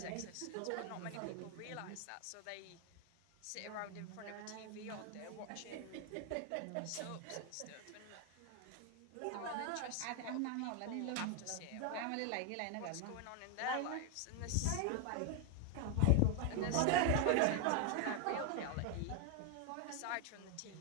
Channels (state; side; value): different; both; correlation 0.01